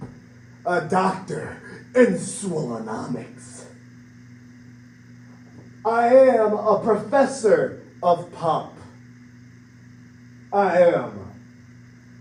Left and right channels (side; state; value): both; identical; correlation 1.00